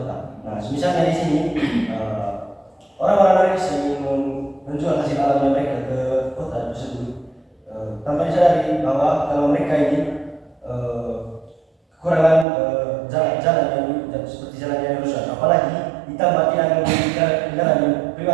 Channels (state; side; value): drops out; left; at 12.5 s